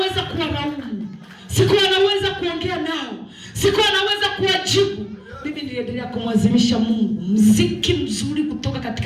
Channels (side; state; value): both; identical; correlation 1.00